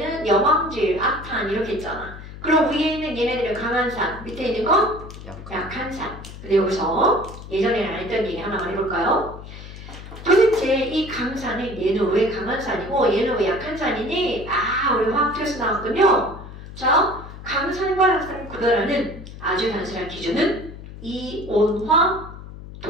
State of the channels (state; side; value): noise; left; hum, 14 dB below the sound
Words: 염황질, 악탄 이렇게 있잖아. 그럼 위에 있는 얘네들은 강한 산, 밑에 있는 건 약한 산. 근데 여기서 예전에는 안 했던 얘기 하나만 해볼까요? 도대체 이 강산은 얘는 왜 강한 산이고 얘는 왜 약한 산이니? 아, 우리 화학투에서 나왔군요. 자, 강산과 약산을 구별하는 아주 단순한 기준은 이온화도.